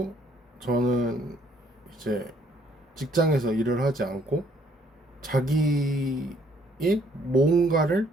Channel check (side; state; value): both; normal; correlation 0.65